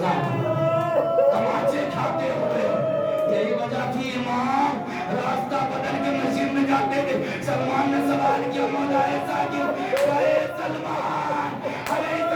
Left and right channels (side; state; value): both; identical; correlation 1.00